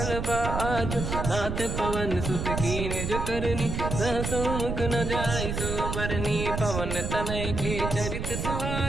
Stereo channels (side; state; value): right; noise; rumble, 3 dB below the sound